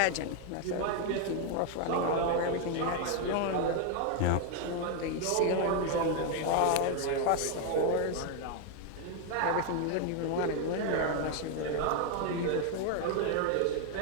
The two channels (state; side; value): different; both; correlation 0.01